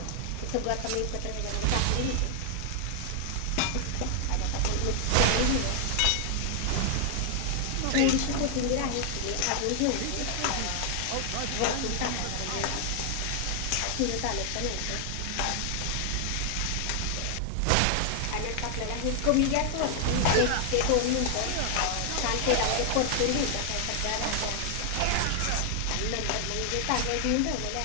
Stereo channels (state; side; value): different; both; correlation 0.00